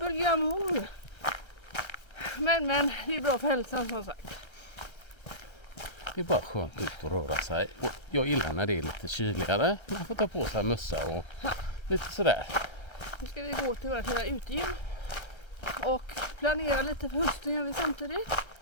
Men det är bra för hälsan som sagt. Det är bara skönt ut och röra sig. Och jag gillar när det är lite kyligare. Man får ta på sig mössa och lite sådär. Nu ska vi gå till vårt lilla utegym. Och planera lite för hösten gör vi samtidigt.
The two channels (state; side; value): late; right; 1.3 ms